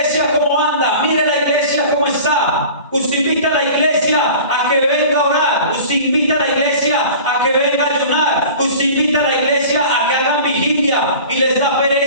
cómo anda, mire la iglesia cómo está. Usted invita a la iglesia a que venga a orar, usted invita a la iglesia a que venga a ayunar, usted invita a la iglesia a que hagan vigilia y les da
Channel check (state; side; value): inverted; both; correlation -0.40